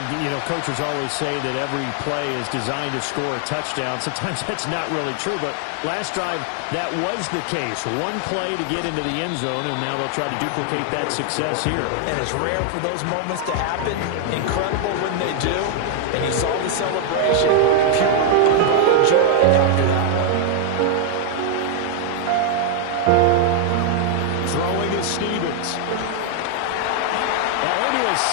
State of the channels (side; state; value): both; different; correlation 0.00